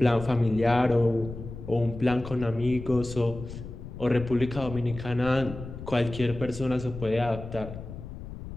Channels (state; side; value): noise; left; rumble, 11 dB below the sound